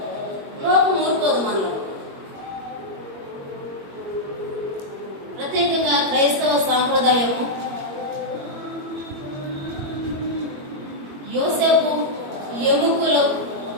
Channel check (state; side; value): late; left; 22 ms